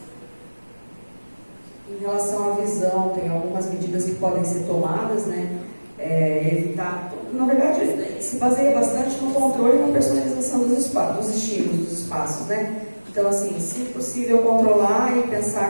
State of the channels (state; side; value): inverted; both; correlation -1.00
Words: Em relação à visão, tem algumas medidas que podem ser tomadas, né, evitar... Na verdade, se baseia bastante no controle e na personalização dos estímulos, dos espaços, né? Então, assim, se possível controlar e